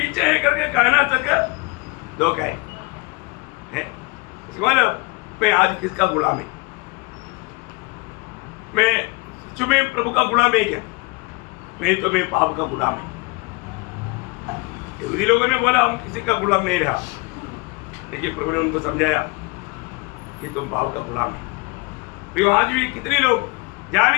है करके कहना तक धोखा है। मतलब मैं आज किसका गुलाम है? मैं सच में प्रभु का गुलाम है क्या? मैं तो मैं पाप का गुलाम है। यहूदी लोगों ने बोला हम किसी का गुलाम नहीं रहा, लेकिन प्रभु ने उनको समझाया कि तुम पाप का गुलाम है। तो आज भी कितने लोग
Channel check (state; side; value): quieter; right; 27.1 dB